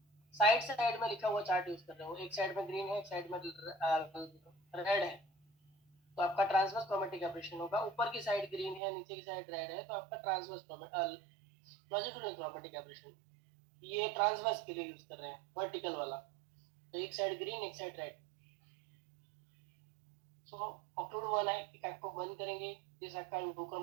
साइड साइड में लिखा हुआ चार्ट यूज कर रहे हो, एक साइड में ग्रीन है एक साइड में रेड है तो आपका ट्रांसवर्स क्रोमेटिक एब्रेशन होगा। ऊपर की साइड ग्रीन है नीचे की साइड रेड है तो आपका ट्रांसवर्स लॉन्जिट्यूडिनल क्रोमेटिक एब्रेशन। ये ट्रांसवर्स के लिए यूज कर रहे हैं, वर्टिकल वाला तो एक साइड ग्रीन एक साइड रेड। सो ऑक्लूड वन आई, एक आंख को बंद करेंगे, जिस आंख का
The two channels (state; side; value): drops out; left; at 8.8 s